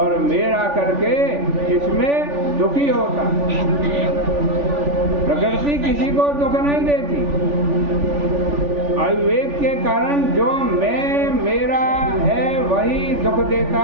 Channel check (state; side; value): late; left; 3.5 ms